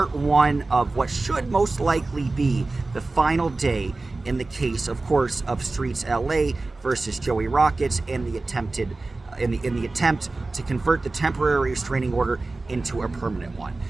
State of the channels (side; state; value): left; quieter; 3.3 dB